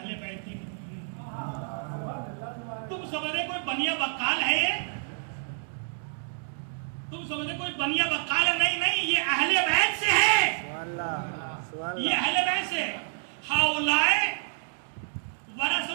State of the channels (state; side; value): silent; left; digital silence